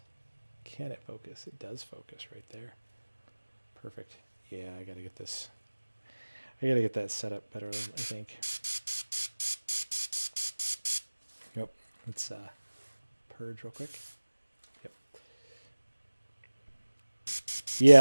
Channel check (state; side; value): inverted; both; correlation -1.00